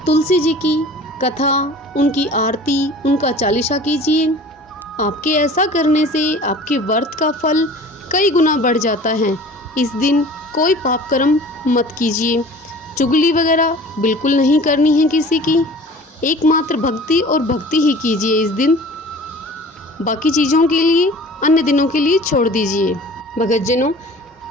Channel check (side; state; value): both; normal; correlation 0.44